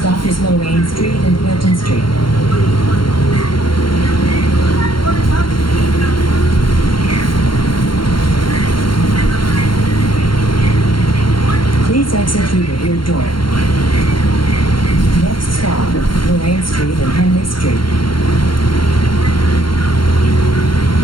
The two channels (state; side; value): late; right; 0.73 ms